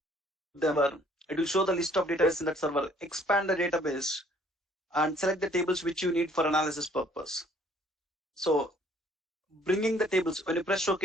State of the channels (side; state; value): both; normal; correlation 0.60